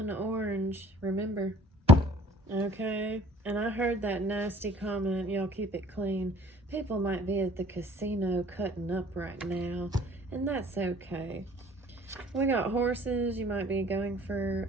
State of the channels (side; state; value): both; normal; correlation 0.52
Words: an orange, remember. Okay? And I heard that nasty comment, y'all keep it clean. People might be at the casino cutting up right now, and that's okay. We got horses. You might be going for